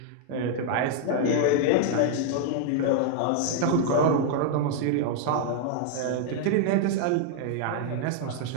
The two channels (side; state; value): both; different; correlation 0.00